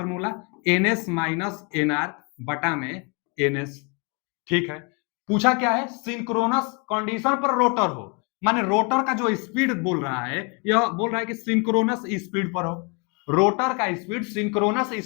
N S minus N R बटा में एन एस। ठीक है, पूछा क्या है, सिंक्रोनस कंडीशन पर रोटर हो, माने रोटर का जो स्पीड बोल रहा है, यह बोल रहा है कि सिंक्रोनस स्पीड पर हो, रोटर का स्पीड सिंक्रोनस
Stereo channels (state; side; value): quieter; right; 31.7 dB